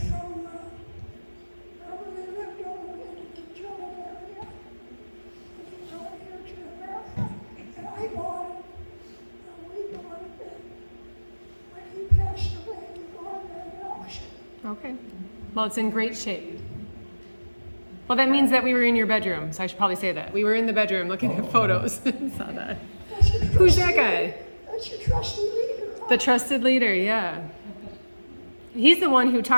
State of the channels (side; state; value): both; inverted; correlation -1.00